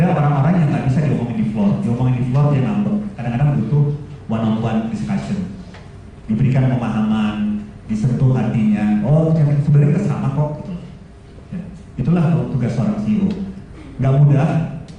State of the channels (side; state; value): both; identical; correlation 1.00